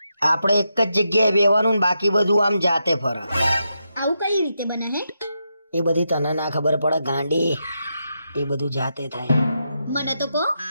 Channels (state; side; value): inverted; both; correlation -0.85